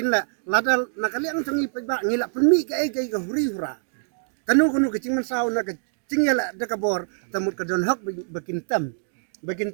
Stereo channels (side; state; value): left; silent; digital silence